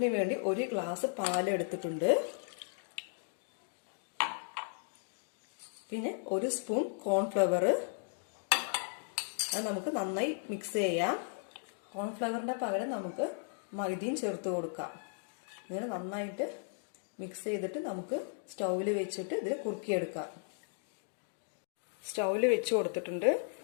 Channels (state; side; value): silent; right; digital silence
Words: 1 ഗ്ലാസ് പാൽ എടുത്തിട്ടുണ്ട്. പിന്നെ 1 സ്പൂൺ കോൺഫ്ലവർ. അത് നമുക്ക് നന്നായി മിക്സ് ചെയ്യാം. കോൺഫ്ലവറിന്റെ പകരം നമുക്ക് മൈദയും ചേർത്ത് കൊടുക്കാം. ഇങ്ങനെ നന്നായിട്ട് മിക്സ് ചെയ്തിട്ട് നമുക്ക് സ്റ്റൗവിൽ വെച്ചിട്ട് ഇതിൽ കുറുക്കിയെടുക്കാം. സ്റ്റൗവിൽ വെച്ച് കൊടുത്തിട്ടുണ്ട്.